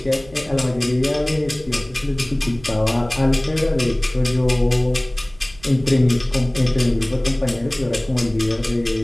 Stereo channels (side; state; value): right; noise; rumble, 24 dB below the sound